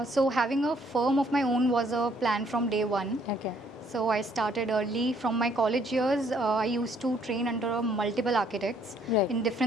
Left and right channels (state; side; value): normal; both; correlation 0.65